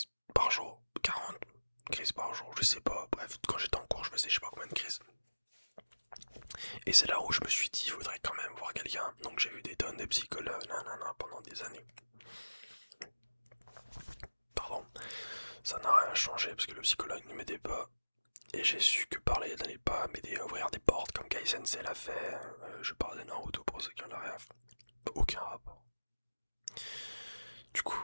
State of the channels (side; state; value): both; inverted; correlation -1.00